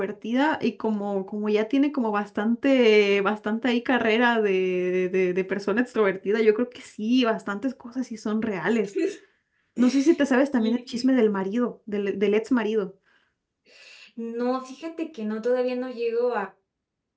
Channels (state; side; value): identical; both; correlation 1.00